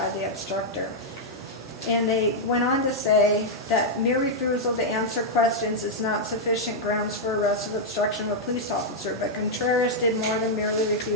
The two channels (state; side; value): normal; both; correlation -0.04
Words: the obstructor. And they went on to say that mere refusal to answer questions is not sufficient grounds for arrest of obstruction of a police officer, but Contreras did more than merely